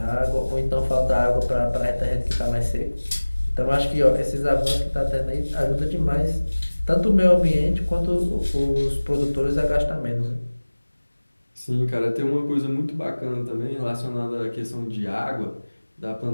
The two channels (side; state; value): both; inverted; correlation -1.00